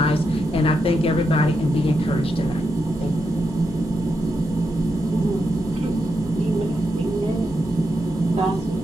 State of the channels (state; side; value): normal; both; correlation 0.84